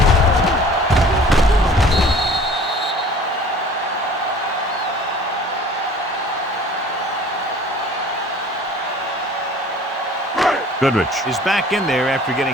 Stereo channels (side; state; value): both; normal; correlation 0.48